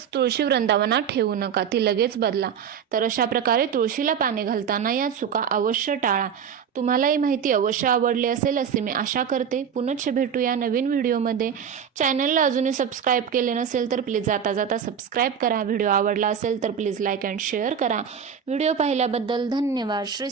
तुळशी वृंदावनात ठेवू नका, ती लगेच बदला. तर अशा प्रकारे तुळशीला पाणी घालताना या चुका अवश्य टाळा. तुम्हाला ही माहिती अवश्य आवडली असेल असे मी आशा करते. पुनश्च भेटूया नवीन व्हिडिओमध्ये. चॅनलला अजूनही सबस्क्राईब केले नसेल तर प्लीज जाता जाता सबस्क्राईब करा. व्हिडिओ आवडला असेल तर प्लीज लाईक अँड शेअर करा. व्हिडिओ पाहिल्याबद्दल धन्यवाद. श्री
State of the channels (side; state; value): left; quieter; 7.7 dB